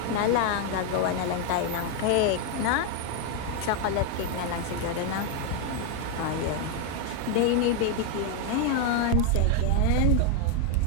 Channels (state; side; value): different; both; correlation 0.01